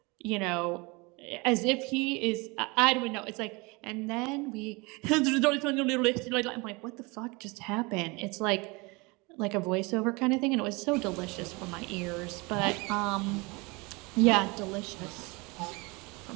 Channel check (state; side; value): quieter; left; 26.4 dB